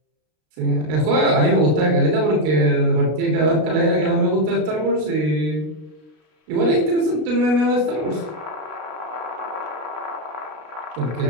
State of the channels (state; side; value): late; left; 33 ms